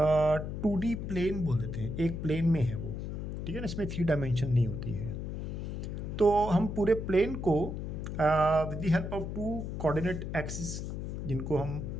2D प्लेन बोल देते हैं। एक प्लेन में है वो, ठीक है ना, इसमें 3 डायमेंशन नहीं होती है। तो हम पूरे प्लेन को with the help of 2 coordinate axis, जिनको हम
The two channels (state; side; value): noise; left; hum, 5 dB below the sound